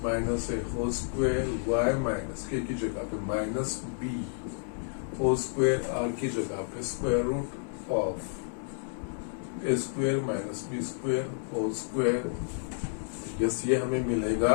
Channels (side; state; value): right; silent; digital silence